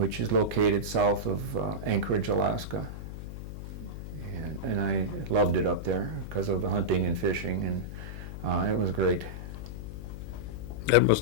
is located south of Anchorage, Alaska. And I loved it up there because of the hunting and fishing, and it was great. That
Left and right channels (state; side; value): noise; left; hum, 9 dB below the sound